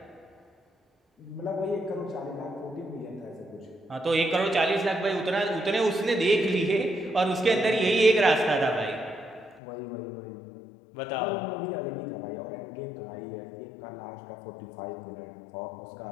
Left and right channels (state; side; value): drops out; right; at 9.6 s